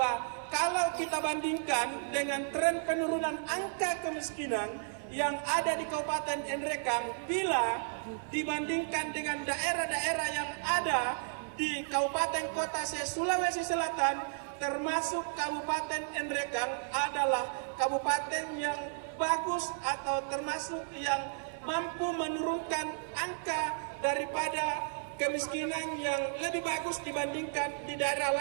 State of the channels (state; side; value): silent; left; 56 dB below the other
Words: kalau kita bandingkan dengan tren penurunan angka kemiskinan yang ada di Kabupaten Nrekang, bila dibandingkan dengan daerah-daerah yang ada di Kabupaten Kota Sulawesi Selatan, termasuk Kabupaten Nrekang adalah kabupaten yang bagus atau termasuk yang mampu menurunkan angka daripada kemiskinan yang lebih bagus dibandingkan di daerah